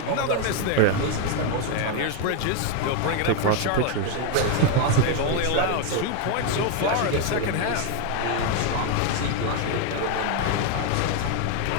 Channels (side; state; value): both; different; correlation 0.01